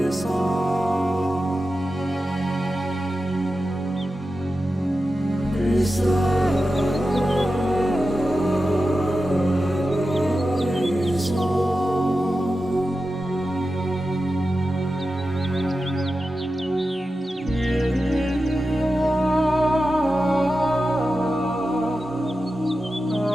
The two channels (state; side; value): normal; both; correlation 0.92